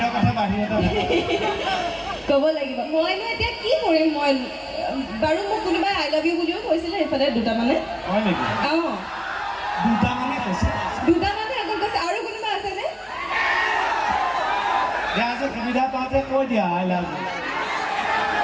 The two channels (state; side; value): identical; both; correlation 1.00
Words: কথা বাহিৰতে ক'ব লাগিব। মইনো এতিয়া কি কৰিম? মই বাৰু মোক কোনোবাই আই লাভ ইউ বুলিও কৈছিলে এইফালে দুটামানে। হয় নেকি? অঁ, দুটামানে কৈছে, দুটামানে অকল কৈছে। আৰু কোনোবা আছেনে? এতিয়া আজি সুবিধা পাওঁতে কৈ দিয়া I love you.